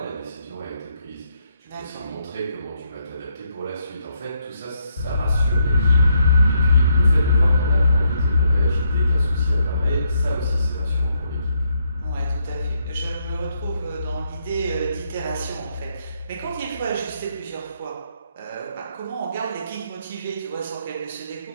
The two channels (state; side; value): inverted; both; correlation -0.75